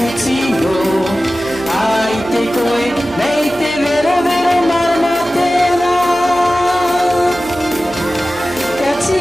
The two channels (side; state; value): left; noise; hum, 23 dB below the sound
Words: no. Ai te koe, mei te vero vero marama tēnā. Ka